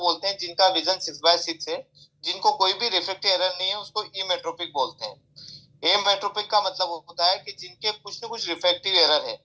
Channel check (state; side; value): identical; both; correlation 1.00